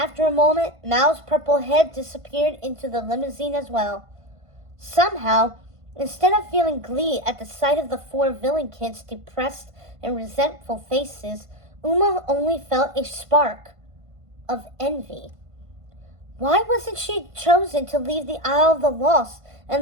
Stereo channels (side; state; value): left; late; 1.5 ms